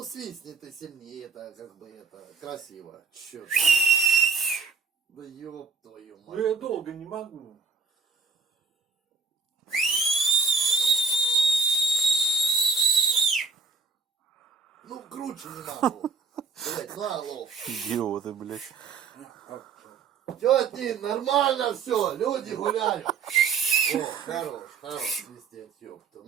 свистни ты сильнее, это как бы это красиво. Чё ты? Да ёб твою Ну мать. я долго не могу. Ну круче не могу. Блять, ну алло. Идиоты, блядь. Тети, нормально все, люди гуляют. О, хорош свистеть, ёпта.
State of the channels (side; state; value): left; quieter; 5.0 dB